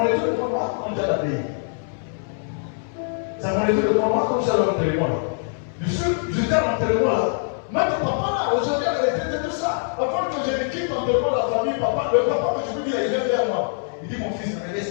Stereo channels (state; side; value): silent; right; 63 dB below the other